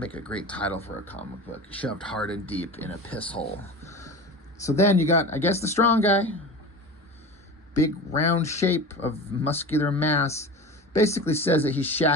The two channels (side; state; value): both; normal; correlation 0.31